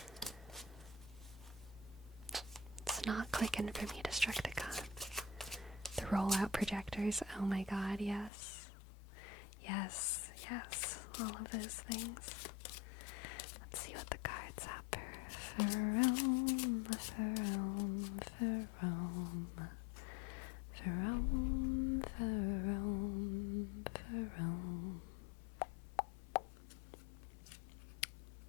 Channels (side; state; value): right; drops out; at 8.3 s